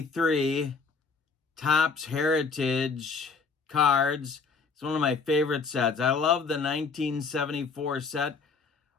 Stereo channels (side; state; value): right; quieter; 4.9 dB